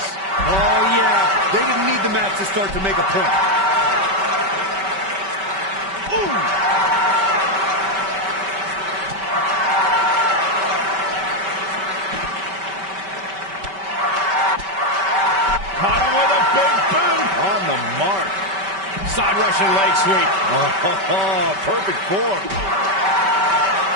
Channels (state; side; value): late; left; 5.2 ms